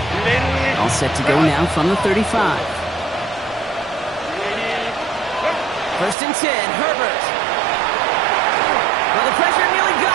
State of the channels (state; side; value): drops out; left; at 6.2 s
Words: All set to go now from the 35. First and 10, Herbert. Well, the pressure nearly